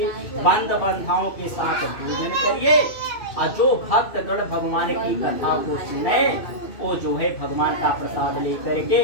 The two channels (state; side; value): late; right; 2.6 ms